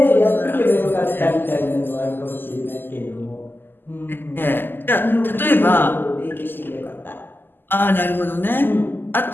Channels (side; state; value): right; late; 0.094 ms